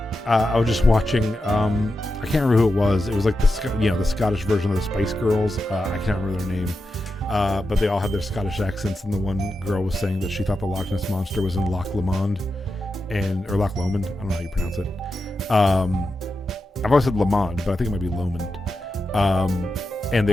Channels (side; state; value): both; normal; correlation 0.89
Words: I was just watching. I can't remember who it was. It was like the Scottish version of the Spice Girls. I can't remember their name, but they all had their Scottish accents. And the one girl was saying that she thought the Loch Ness monster was in Loch Lomond, or Loch Lomond. I don't know how you pronounce it. I've always said Lomond, but I think it might be Lomond. And